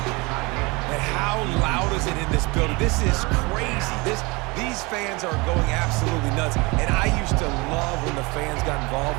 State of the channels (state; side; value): quieter; left; 25.7 dB